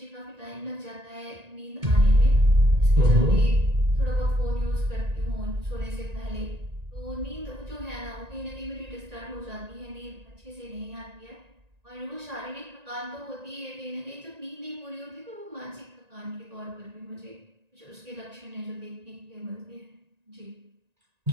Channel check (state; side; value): late; left; 1.9 ms